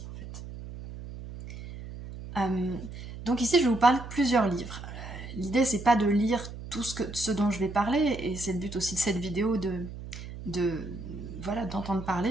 en fait. Donc ici je vais vous parler de plusieurs livres. L'idée c'est pas de lire tout ce dont je vais parler, et c'est le but aussi de cette vidéo voilà, d'entendre parler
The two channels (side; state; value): right; noise; hum, 11 dB below the sound